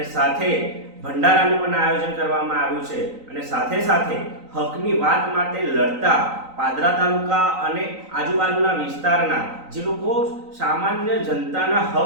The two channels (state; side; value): late; left; 3.9 ms